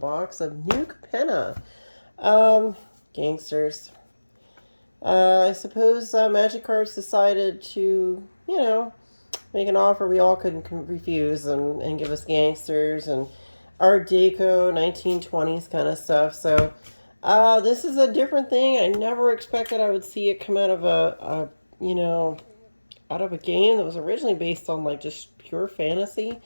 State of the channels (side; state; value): both; inverted; correlation -1.00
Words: of new Capenna. Gangsters. I suppose Magic Cards decided to, make an offer we all couldn't refuse and give us Gangsters and Art Deco, 1920s kind of stuff. So, this is a different thing. I never expected I would see it come out of out of a game that was originally based on like just pure fantasy.